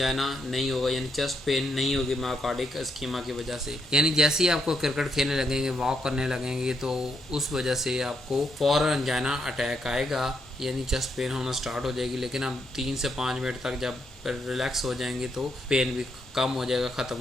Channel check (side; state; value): both; normal; correlation 0.78